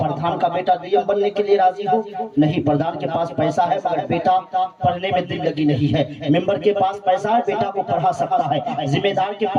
کا بیٹا ڈی ایم بننے کے لیے راضی ہو؟ نہیں، پردھان کے پاس پیسہ ہے مگر بیٹا پڑھنے میں دل لگی نہیں ہے، ممبر کے پاس پیسہ ہے بیٹا کو پڑھا سکتا ہے، ذمہ دار کے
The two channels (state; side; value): identical; both; correlation 1.00